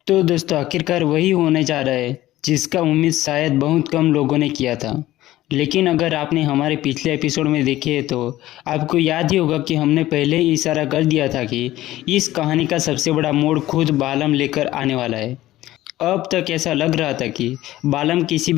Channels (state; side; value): quieter; right; 15.5 dB